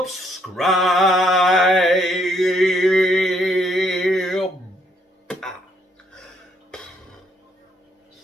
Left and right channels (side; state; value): both; normal; correlation 0.71